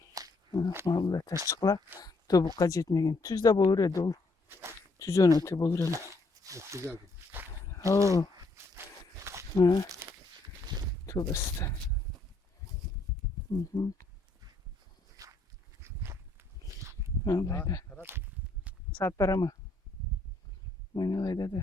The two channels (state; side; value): quieter; right; 3.1 dB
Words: Vallahi taşçıklar tobukka jetmegen. Tüz de bolur edi ol. Tüzön öte bolur ele. Güzel. Oo. Ha. Tövbesi de. Vallahi de. Saat para mı? Oynalayda